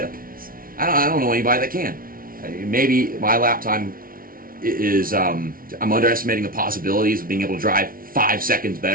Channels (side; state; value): left; late; 0.42 ms